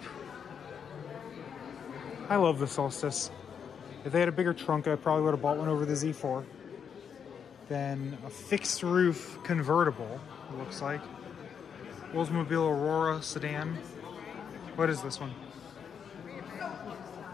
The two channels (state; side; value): quieter; right; 7.3 dB